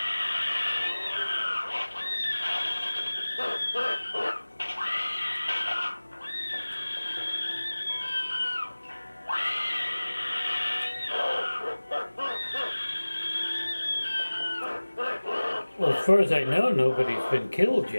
Well, as far as I know, nobody's been killed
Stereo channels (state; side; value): inverted; both; correlation -1.00